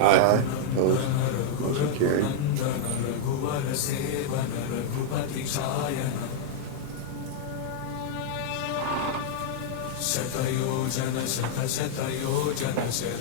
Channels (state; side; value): different; both; correlation -0.01